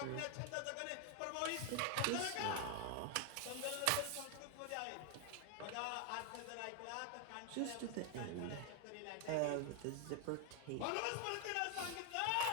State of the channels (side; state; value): both; different; correlation 0.00